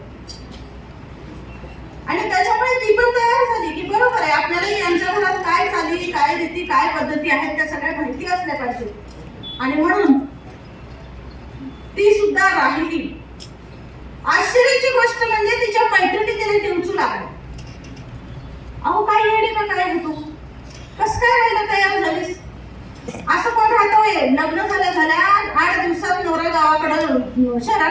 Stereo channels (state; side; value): identical; both; correlation 1.00